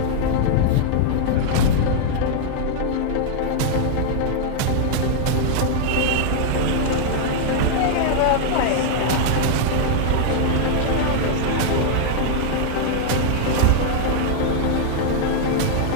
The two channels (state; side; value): different; both; correlation -0.01